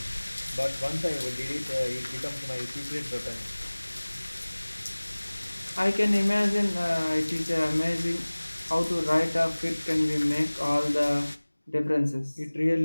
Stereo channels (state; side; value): inverted; both; correlation -1.00